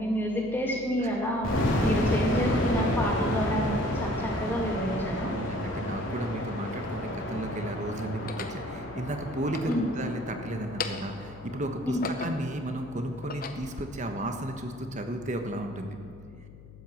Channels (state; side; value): noise; left; hum, 18 dB below the sound